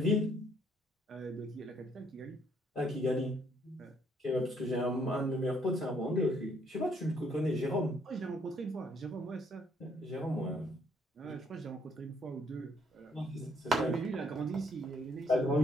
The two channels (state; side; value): normal; both; correlation 0.68